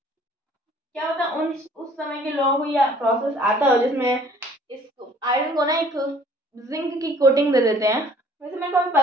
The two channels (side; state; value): both; normal; correlation 0.55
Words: क्या होता है उस समय के लोगों को यह प्रोसेस आता हो जिसमें इस आयरन को ना एक जिंक की कोटिंग दे देते हैं। वैसे मेरे को अभी